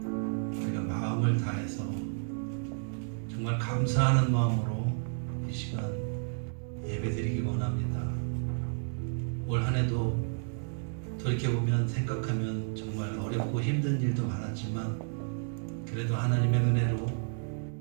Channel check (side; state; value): left; silent; 57 dB below the other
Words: 우리가 마음을 다해서 정말 감사하는 마음으로 이 시간 예배드리기 원합니다. 올 한 해도 돌이켜보면 생각하면 정말 어렵고 힘든 일도 많았지만 그래도 하나님의 은혜로